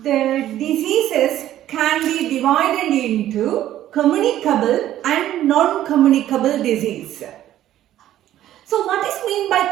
diseases can be divided into communicable and non-communicable disease. So what is meant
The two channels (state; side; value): quieter; left; 12.7 dB